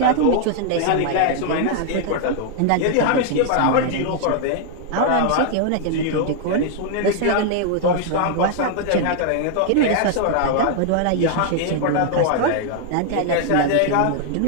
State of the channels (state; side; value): different; both; correlation -0.01